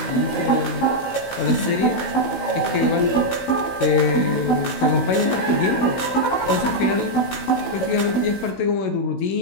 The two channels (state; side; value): late; right; 16 ms